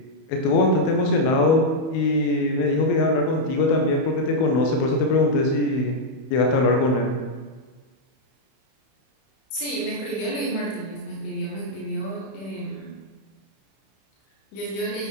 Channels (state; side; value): late; right; 31 ms